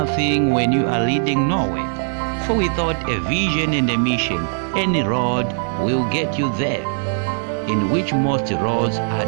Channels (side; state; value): left; silent; digital silence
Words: when you are leading nowhere, for without a vision and a mission, any road will get you there, in which most roads are